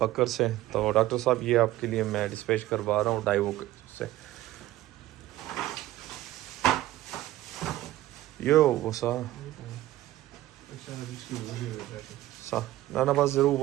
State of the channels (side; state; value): left; quieter; 15.5 dB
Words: बकर से। तो डॉक्टर साहब ये आपके लिए मैं डिस्पैच करवा रहा हूँ डाइवो से। यो वो सा ना बस जरूर